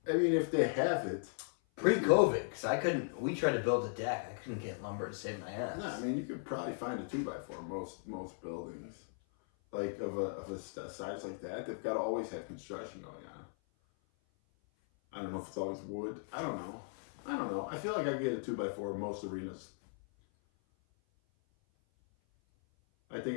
I mean, if they have it. Pre-COVID, because we tried to build a deck. I couldn't get lumber to save my ass. No, I mean, you could probably find a 2x4 most buildings. Like, of a size like that, they've got to always have construction going on. I don't know if it's always wood. I don't know. I feel like I get a 2x4 in most arenas. I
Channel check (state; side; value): silent; right; 53 dB below the other